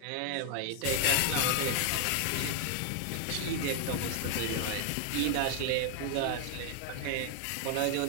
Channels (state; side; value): different; both; correlation 0.00